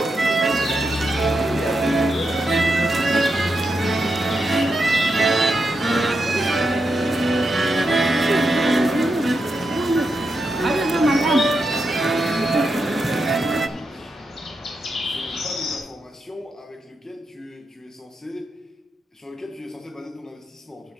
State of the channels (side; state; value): both; normal; correlation 0.85